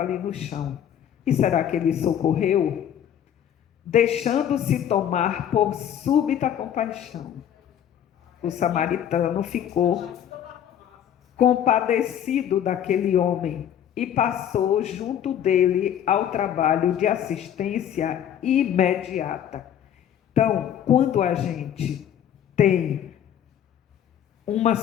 ali no chão. E será que ele socorreu? Deixando-se tomar por súbita compaixão, o samaritano ficou compadecido daquele homem e passou junto dele ao trabalho de assistência imediata. Então, quando a gente tem uma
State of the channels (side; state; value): right; quieter; 9.9 dB